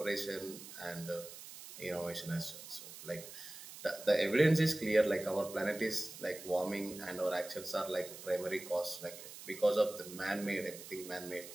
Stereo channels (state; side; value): noise; right; hiss, 13 dB below the sound